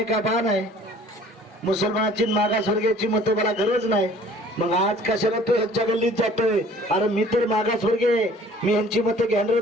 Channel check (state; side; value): normal; both; correlation 0.51